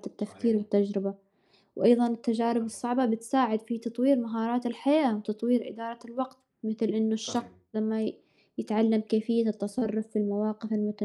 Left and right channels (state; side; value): identical; both; correlation 1.00